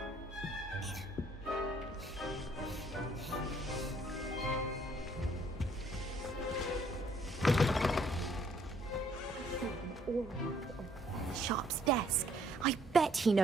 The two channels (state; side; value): normal; both; correlation 0.64